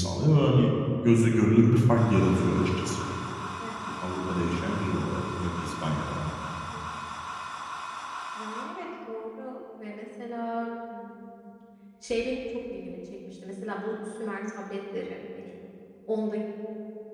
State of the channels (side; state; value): both; identical; correlation 1.00